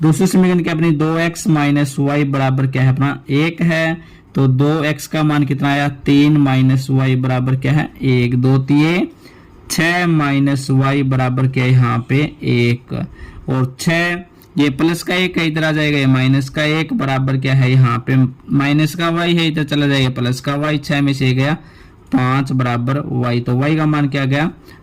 दूसरी समीकरण क्या अपनी 2x माइनस वाई बराबर क्या है अपना 1 है, तो 2x का मान कितना आया 3 माइनस वाई बराबर क्या है 1, 2 3 6 माइनस वाई बराबर क्या है यहाँ पे 1, और 6 ये प्लस का 1 है इधर आ जाएगा, ये माइनस का 1 बराबर क्या है यहाँ पे माइनस का y है इधर चला जाएगा प्लस का y, 6 में से गया 5 बराबर y, तो y का मान क्या गया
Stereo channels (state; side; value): identical; both; correlation 1.00